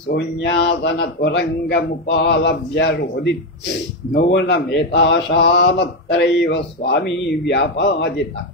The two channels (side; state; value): both; normal; correlation 0.08